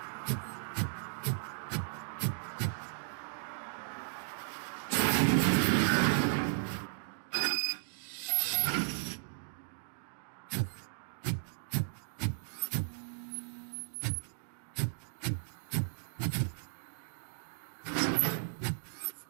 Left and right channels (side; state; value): left; silent; digital silence